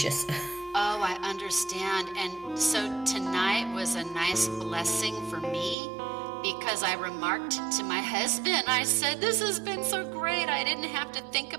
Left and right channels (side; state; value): left; drops out; at 5.8 s